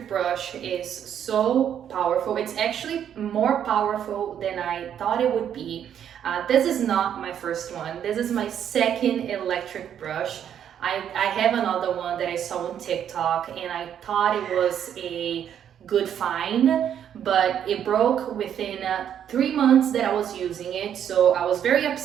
brush is so powerful. It's actually more powerful than I thought it would be. This is not my first one. This is my second electric brush. I have another one that I saw on TikTok, and I thought it was a good find, but it broke within 3 months that I was using it, so I was very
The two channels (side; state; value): left; quieter; 9.3 dB